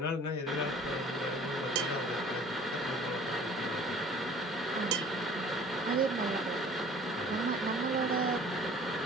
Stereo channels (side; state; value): both; normal; correlation 0.49